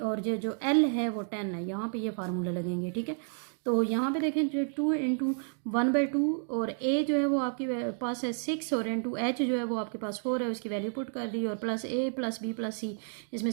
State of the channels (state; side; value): silent; left; 57 dB below the other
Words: ये जो एल है वो 10 है। यहाँ पे ये फार्मूले लगेंगे। ठीक है, तो यहाँ पे देखें जो 2 इंटू 1/2, और ए जो है वो आपके पास है 6, और इंटू एच जो है वो आपके पास 4 है, उसकी वैल्यू पुट कर दी, और plus A plus B plus सी, इसमें